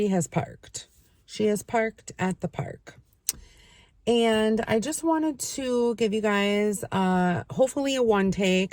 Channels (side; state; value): both; identical; correlation 1.00